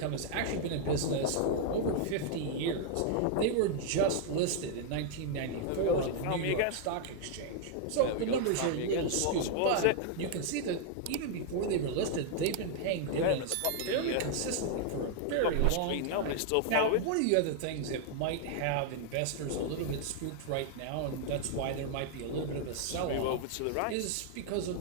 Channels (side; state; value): both; different; correlation 0.00